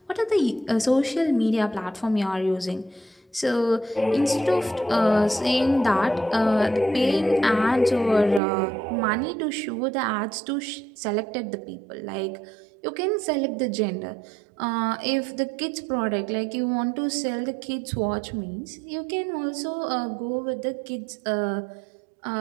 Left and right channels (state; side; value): drops out; left; at 8.4 s